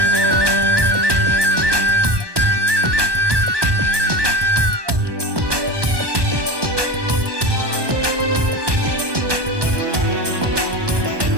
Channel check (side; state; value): left; late; 1.2 ms